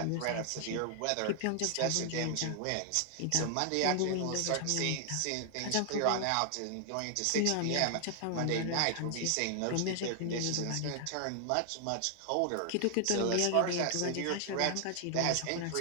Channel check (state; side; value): different; both; correlation 0.00